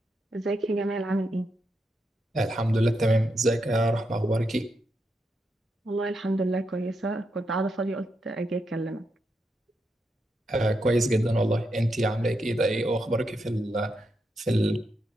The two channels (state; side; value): normal; both; correlation 0.83